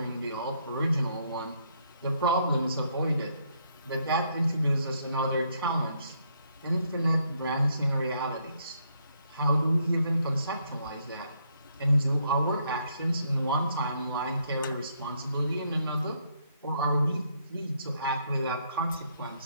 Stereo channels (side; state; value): both; inverted; correlation -0.72